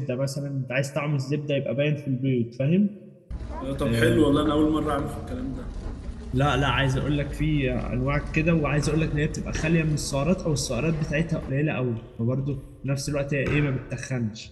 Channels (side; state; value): both; identical; correlation 1.00